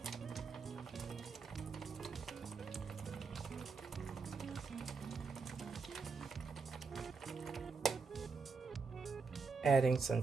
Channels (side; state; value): left; quieter; 4.9 dB